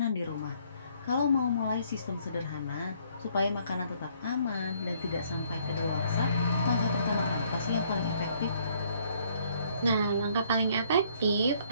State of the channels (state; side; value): inverted; both; correlation -0.65